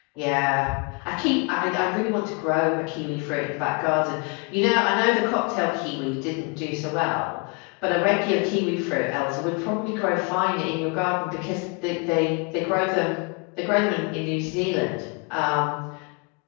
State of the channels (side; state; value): right; quieter; 33.0 dB